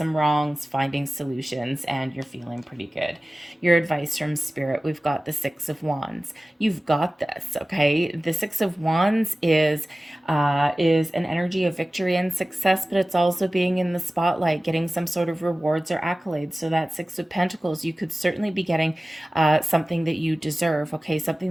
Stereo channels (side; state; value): both; normal; correlation 0.97